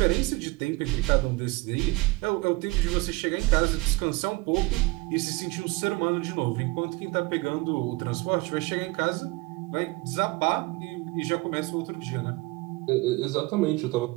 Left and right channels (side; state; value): left; quieter; 23.1 dB